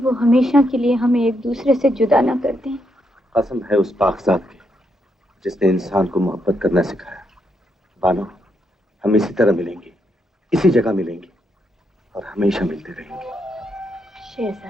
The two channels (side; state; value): both; normal; correlation 0.79